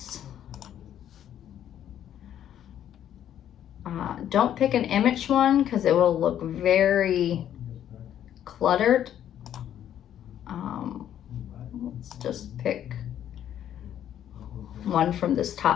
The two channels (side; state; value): right; quieter; 10.6 dB